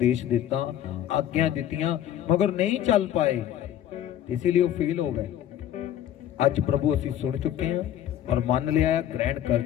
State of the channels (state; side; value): quieter; right; 11.2 dB